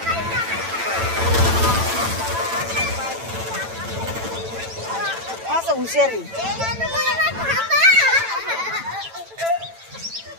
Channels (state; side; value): late; left; 9.0 ms